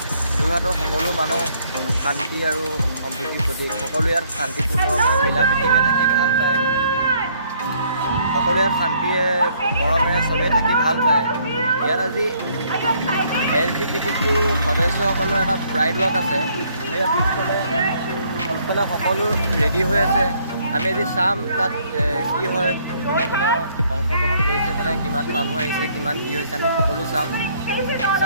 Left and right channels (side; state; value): both; inverted; correlation -0.66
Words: যোৰহাটৰ সকলো মানুহ শান্তি আৰু সম্প্ৰীতিৰ প্ৰতীক। সকলো ইয়াত শান্তিপূৰ্ণ মিলা প্ৰীতিৰে থাকি ভাল পায়। সকলো ইয়াত শান্তিৰে মৰমেৰে চবেই থাকি ভাল পায়। ইয়াত আজি LGBTQ সদস্যসকলৰ এটা প্ৰাইড ৱাক আছে। সেই পিছফালে সকলো ৰেডি হৈ আছে। আমি আজি চাম তাত কি হয়, কোনে কোনে অংশগ্ৰহণ কৰিছে, মানে কিমান মানুহ আহিছে, কিমান কি হৈছে, আমি সকলো চাম।